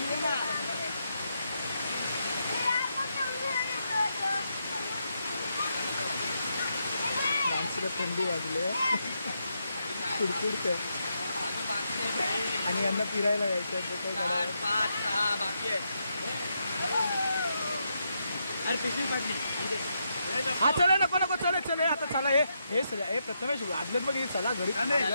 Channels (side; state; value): both; inverted; correlation -0.81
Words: माणसाला थंडी वाजली कुडकुडते आणि यांना फिरायला यायचं. हा चला नको चले चले आता चला. हे प्रथमेश आदलेच बघ, चला घरी